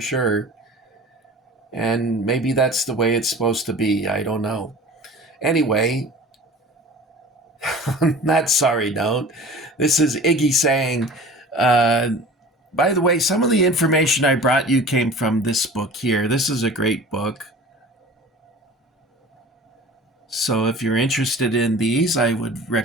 And maybe that's the way it's supposed to be. I don't know. Anyway, on that sorry note, this is Iggy saying, by the way, some of the information I brought you came from this book here. This is a great book. So if you're interested in these, I would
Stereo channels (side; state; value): both; normal; correlation 0.41